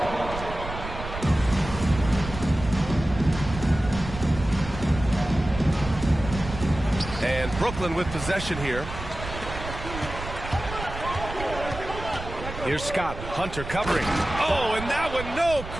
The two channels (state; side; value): noise; right; rumble, 9 dB below the sound